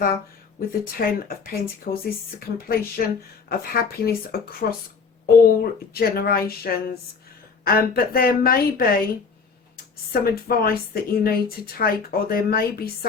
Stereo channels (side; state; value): right; quieter; 5.2 dB